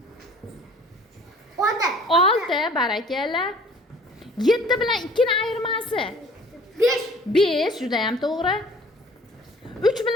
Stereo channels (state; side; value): normal; both; correlation 0.51